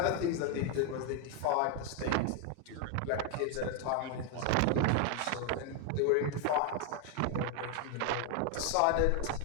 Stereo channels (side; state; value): both; different; correlation 0.01